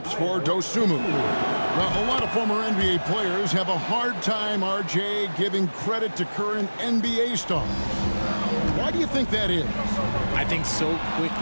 for Dosunmu. Well, a lot of former NBA players have a hard time, RJ, giving credit to current NBA stars. Why do you think that is? I think so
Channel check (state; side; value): inverted; both; correlation -1.00